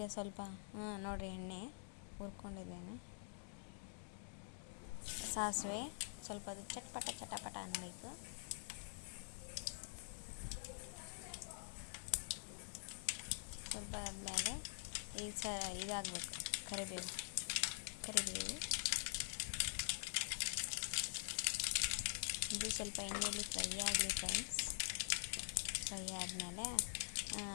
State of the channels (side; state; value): right; silent; digital silence